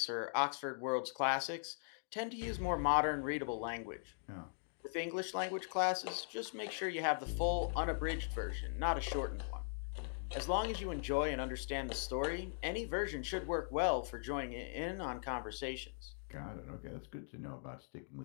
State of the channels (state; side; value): silent; right; digital silence